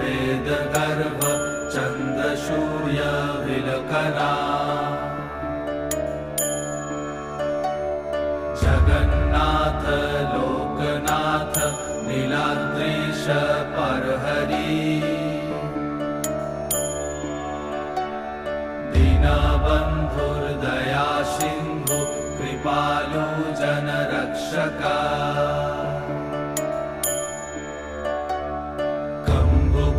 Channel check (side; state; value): both; identical; correlation 1.00